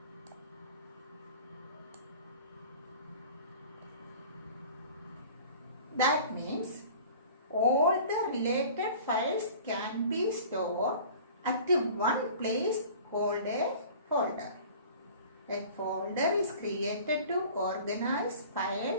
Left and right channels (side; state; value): both; inverted; correlation -0.44